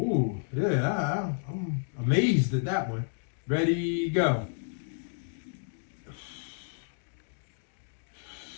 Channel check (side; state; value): right; silent; digital silence